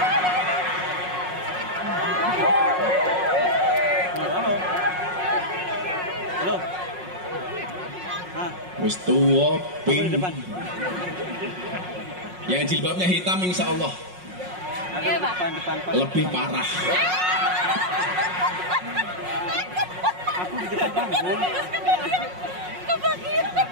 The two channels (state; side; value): late; left; 5.5 ms